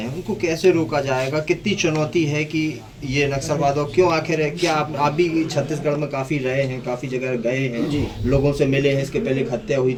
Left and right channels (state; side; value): identical; both; correlation 1.00